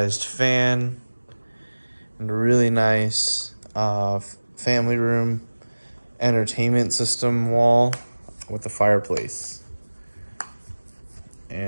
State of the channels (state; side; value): inverted; both; correlation -1.00